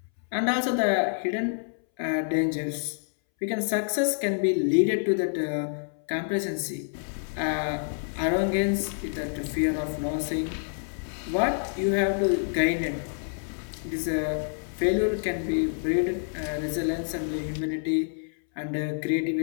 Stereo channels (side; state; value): right; silent; 60 dB below the other